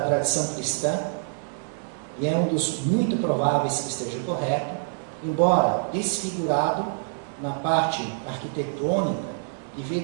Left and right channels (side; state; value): left; silent; 61 dB below the other